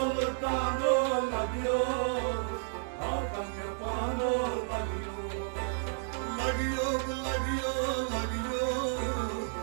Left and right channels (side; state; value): left; silent; digital silence